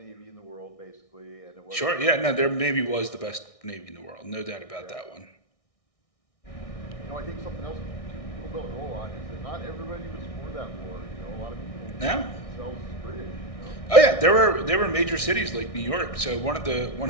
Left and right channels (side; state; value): right; late; 1.6 ms